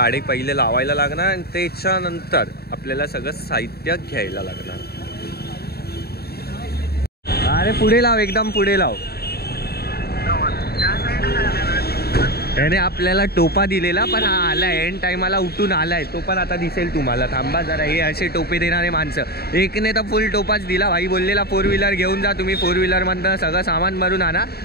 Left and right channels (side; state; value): right; late; 0.46 ms